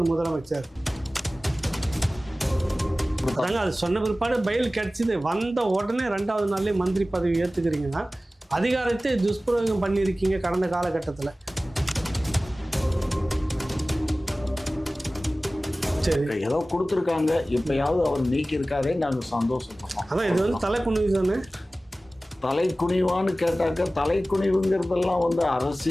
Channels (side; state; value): both; normal; correlation 0.97